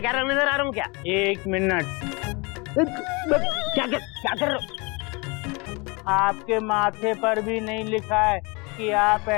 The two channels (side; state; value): right; quieter; 28.5 dB